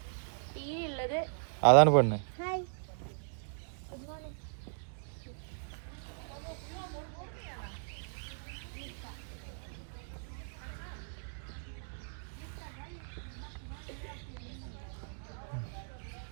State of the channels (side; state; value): left; silent; digital silence